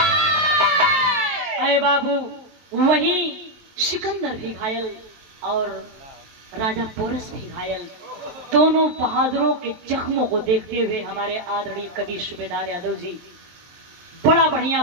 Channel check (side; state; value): left; late; 23 ms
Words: अरे बाबू वही सिकंदर भी घायल और राजा पोरस भी घायल। दोनों बहादुरों के जख्मों को देखते हुए हमारे आदरणीय कवि सूबेदार यादव जी बड़ा बढ़िया